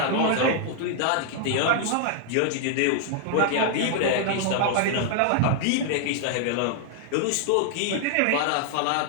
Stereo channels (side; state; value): both; different; correlation -0.01